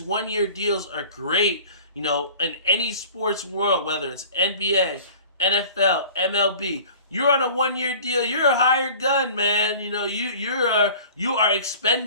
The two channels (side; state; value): both; inverted; correlation -0.44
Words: 1-year deals are great, in any sports world, whether it's NBA, NFL, MLB. You're on a 1-year deal. You're a hired gun, man. You are